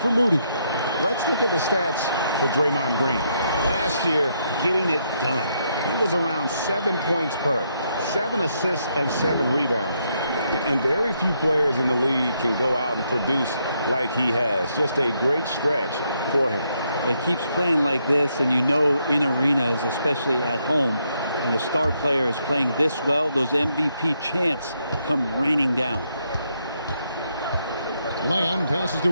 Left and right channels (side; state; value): both; inverted; correlation -0.76